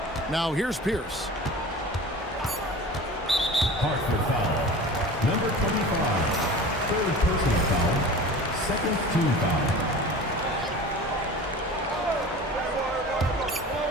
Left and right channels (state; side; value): normal; both; correlation 0.37